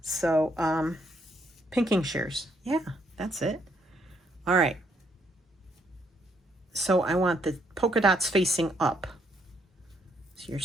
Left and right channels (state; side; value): normal; both; correlation 0.72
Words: so pinking shears. Yeah, that's it. All right. So I want the polka dots facing up. So you're